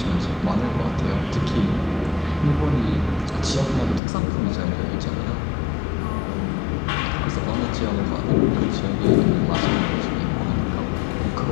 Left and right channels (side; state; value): right; drops out; at 4.0 s